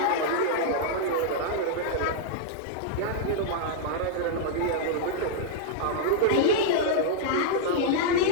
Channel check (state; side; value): different; both; correlation -0.01